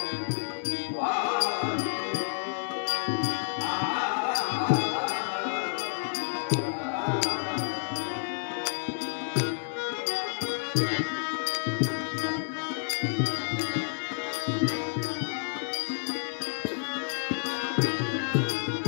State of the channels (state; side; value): silent; right; 58 dB below the other